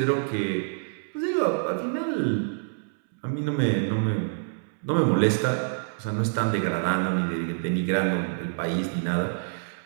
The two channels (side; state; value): left; silent; 60 dB below the other